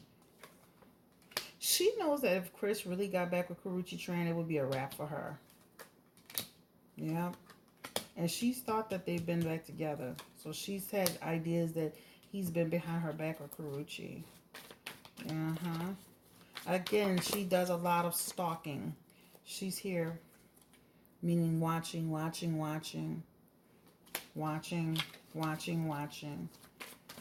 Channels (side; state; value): both; identical; correlation 1.00